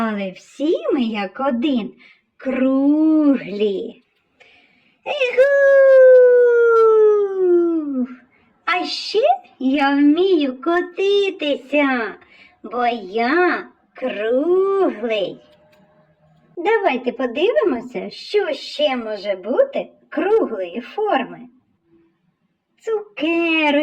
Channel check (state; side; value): identical; both; correlation 1.00